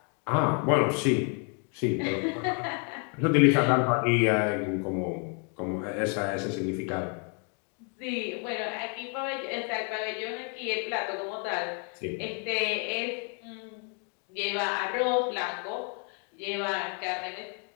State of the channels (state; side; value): quieter; right; 39.2 dB